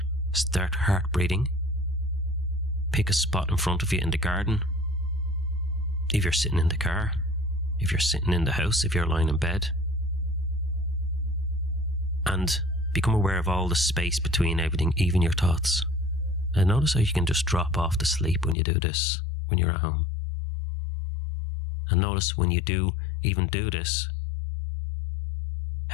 start heart breathing, pick a spot in front of you in the garden, if you're sitting in the car, if you're sitting in the house, if you're lying in bed, and become aware of all the space between everything, even your thoughts. And notice how you can just drop off to sleep when you do this, when you're at home. And notice when you do even do this,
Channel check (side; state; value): right; drops out; at 18.6 s